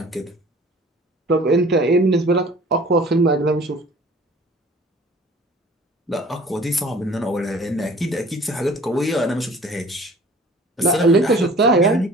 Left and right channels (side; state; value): both; normal; correlation 0.48